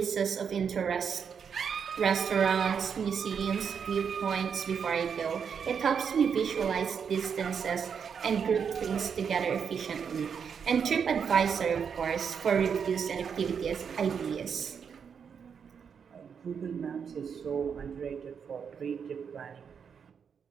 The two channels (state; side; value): quieter; left; 6.9 dB